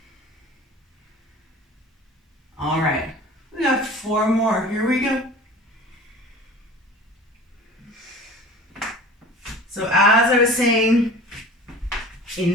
All right, we got 4 more. Here we go. So as I was saying in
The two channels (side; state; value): both; normal; correlation 0.41